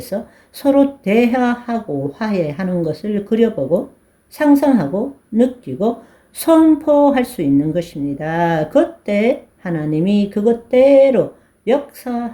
서로 대화하고 화해하는 것을 그려보고 상상하고 느끼고 선포할 수 있는 것입니다. 그때 하나님이 그것대로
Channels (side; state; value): both; identical; correlation 1.00